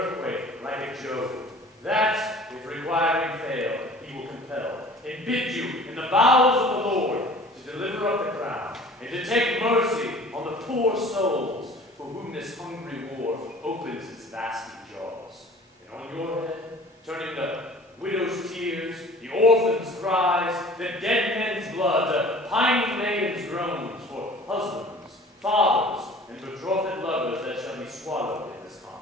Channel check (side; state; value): both; normal; correlation 0.46